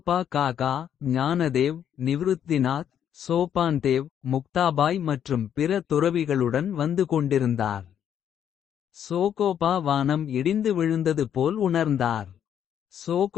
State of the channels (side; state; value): right; quieter; 9.3 dB